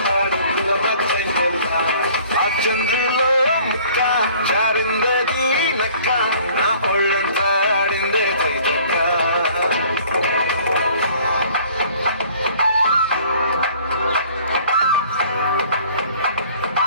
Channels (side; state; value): both; inverted; correlation -0.53